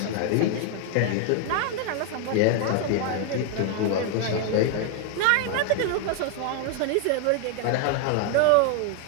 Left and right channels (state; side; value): different; both; correlation 0.00